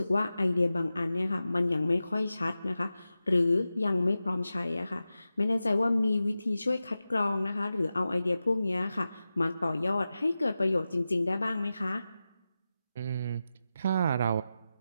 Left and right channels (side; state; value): both; inverted; correlation -0.93